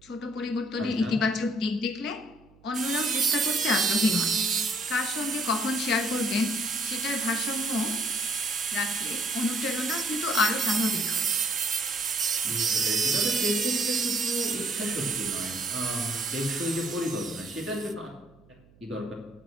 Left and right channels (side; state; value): right; noise; hum, 28 dB below the sound